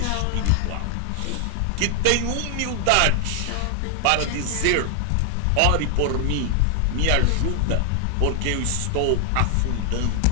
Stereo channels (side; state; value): both; different; correlation 0.00